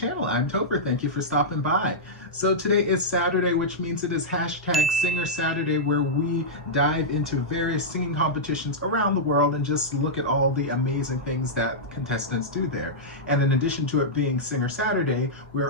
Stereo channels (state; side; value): normal; both; correlation -0.10